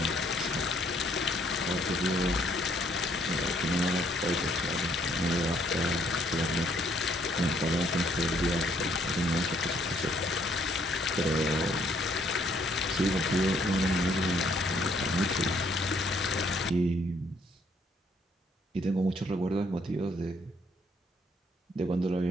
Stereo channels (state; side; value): normal; both; correlation 0.67